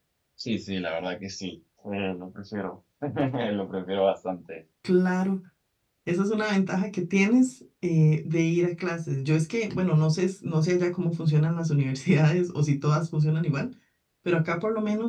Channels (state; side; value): identical; both; correlation 1.00